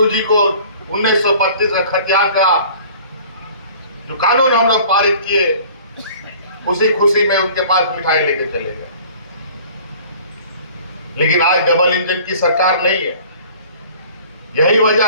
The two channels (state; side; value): inverted; both; correlation -0.48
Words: को 1932 का खतियार का जो कानून हम लोग पारित किए, उसी खुशी में उनके पास मिठाई लेके चले गए। लेकिन आज डबल इंजन की सरकार नहीं है। यही वजह